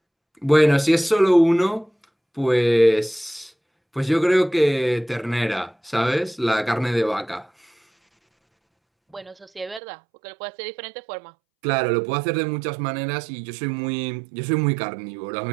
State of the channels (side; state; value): left; drops out; at 9.8 s